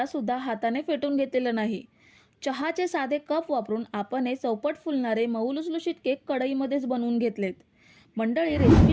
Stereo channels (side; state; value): both; identical; correlation 1.00